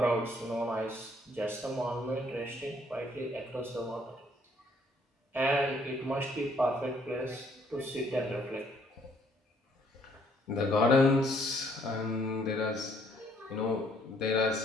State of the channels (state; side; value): normal; both; correlation 0.66